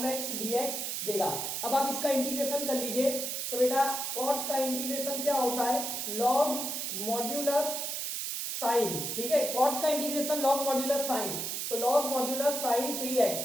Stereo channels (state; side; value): noise; right; hiss, 3 dB below the sound